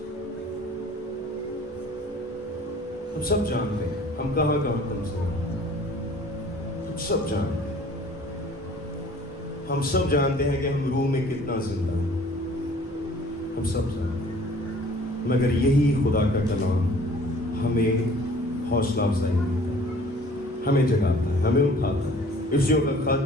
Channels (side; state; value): both; normal; correlation 0.51